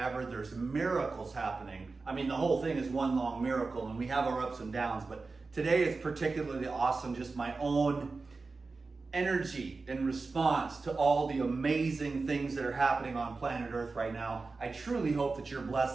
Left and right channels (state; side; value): quieter; left; 4.0 dB